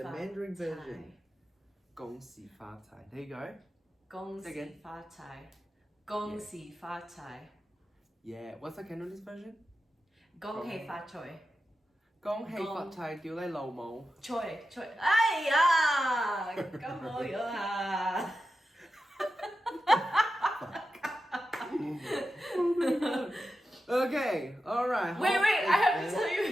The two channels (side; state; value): both; normal; correlation 0.91